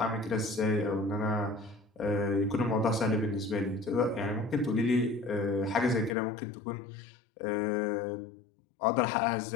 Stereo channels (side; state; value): right; drops out; at 6.2 s